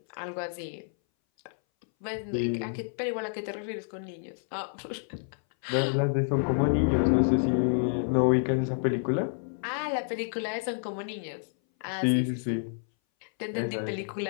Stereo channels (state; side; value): silent; right; 58 dB below the other